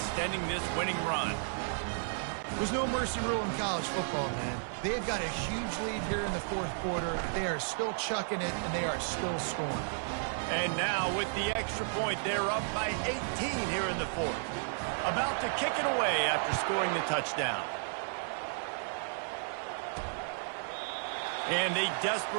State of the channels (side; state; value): left; silent; 56 dB below the other